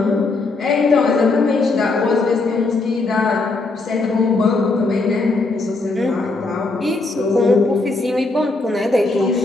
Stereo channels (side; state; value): right; quieter; 3.4 dB